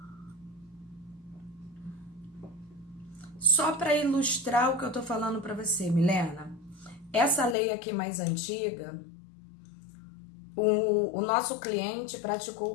Só para ilustrar o que eu tô falando para você, Milena, essa lei aqui mais antiga, o nosso cliente praticou o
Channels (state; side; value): drops out; right; at 7.6 s